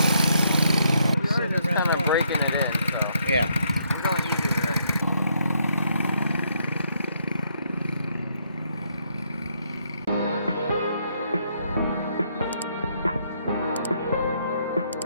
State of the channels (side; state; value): both; inverted; correlation -0.73